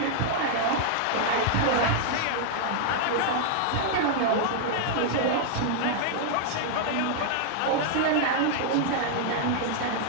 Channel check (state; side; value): different; both; correlation -0.01